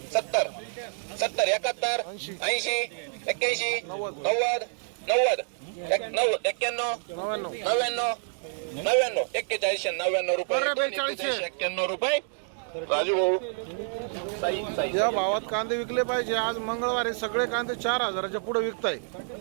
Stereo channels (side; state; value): left; silent; 59 dB below the other